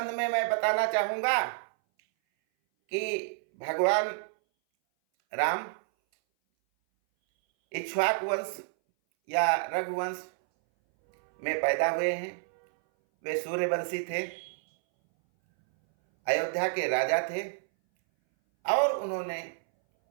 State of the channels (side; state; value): left; silent; 58 dB below the other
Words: में मैं बताना चाहूँगा कि भगवान राम इक्ष्वाकु वंश या रघुवंश में पैदा हुए हैं। वे सूर्यवंशी थे, अयोध्या के राजा थे और उन्होंने